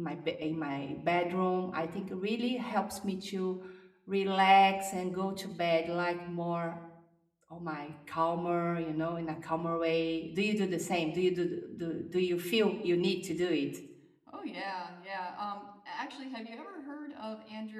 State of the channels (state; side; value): identical; both; correlation 1.00